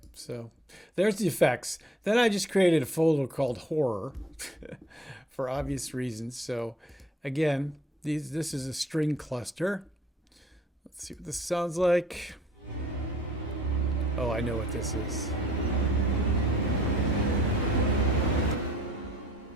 so there's the effects. Then I just created a folder called Horror for obvious reasons. So again, this is a string cluster. Let's see what this sounds like. Oh, I know what this is.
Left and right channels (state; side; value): normal; both; correlation 0.57